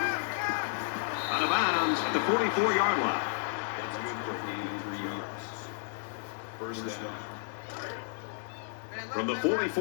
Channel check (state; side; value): silent; right; digital silence